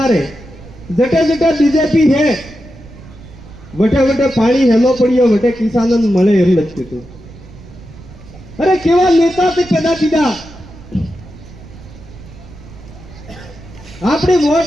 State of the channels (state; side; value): noise; right; rumble, 18 dB below the sound